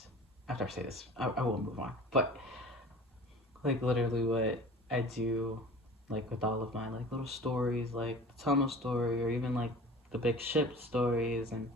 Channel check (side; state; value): both; normal; correlation 0.41